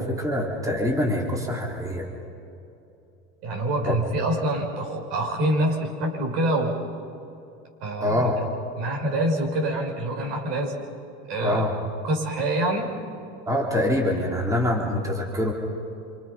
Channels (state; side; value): normal; both; correlation 0.38